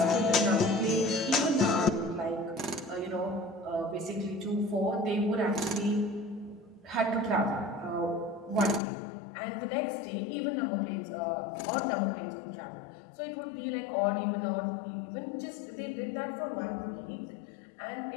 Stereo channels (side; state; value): right; drops out; at 8.8 s